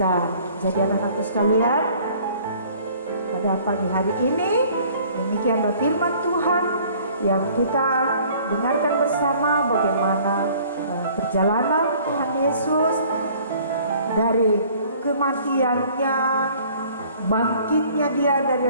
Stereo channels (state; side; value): inverted; both; correlation -0.54